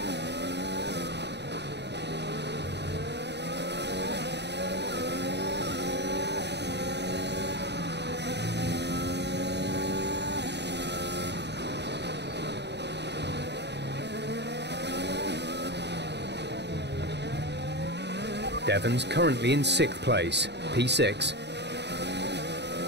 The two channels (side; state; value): left; late; 0.50 ms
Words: Devon's currently in 6th place, P6.